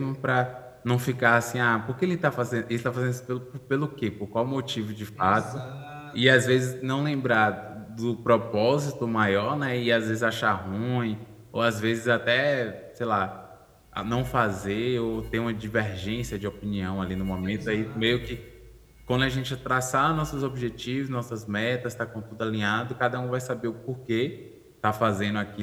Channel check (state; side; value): identical; both; correlation 1.00